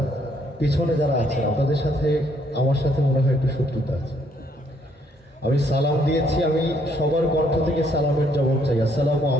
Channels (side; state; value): both; normal; correlation 0.69